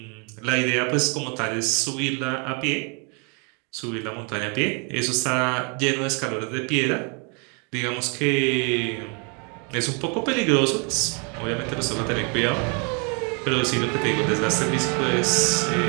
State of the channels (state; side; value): quieter; left; 35.1 dB